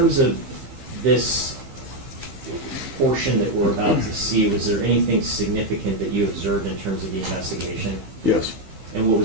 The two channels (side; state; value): left; late; 15 ms